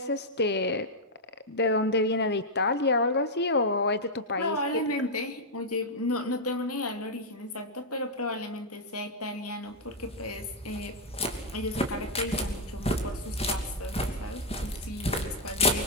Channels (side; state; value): both; normal; correlation -0.04